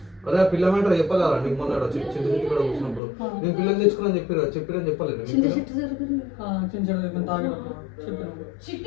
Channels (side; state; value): right; drops out; at 3.0 s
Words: అదే పిల్ల మ్యాటర్ చెప్పాలా నీకు? మొన్న చిట్టి కూడా కూర్చున్నప్పుడు నేను పిల్లలు తెచ్చుకున్నాను చెప్పిరని చెప్పలేదు.